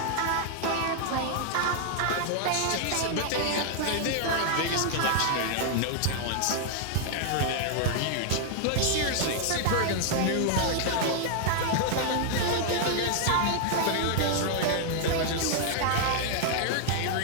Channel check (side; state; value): both; different; correlation 0.00